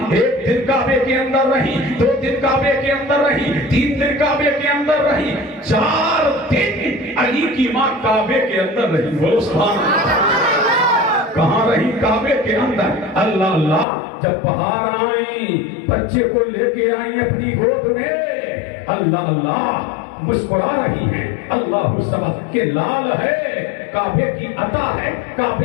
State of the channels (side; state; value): right; drops out; at 13.9 s